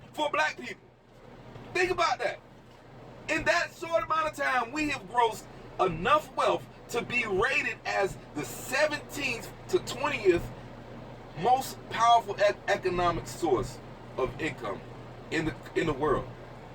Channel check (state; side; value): identical; both; correlation 1.00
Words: for black people. Think about that. In that short amount of time, we have grossed enough wealth to be rated as the 17th to 20th most powerful economic source of income in the world,